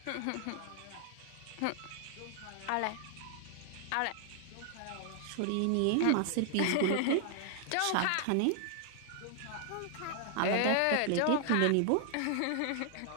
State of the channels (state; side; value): different; both; correlation 0.00